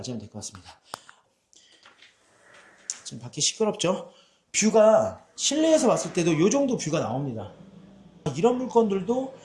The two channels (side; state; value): both; identical; correlation 1.00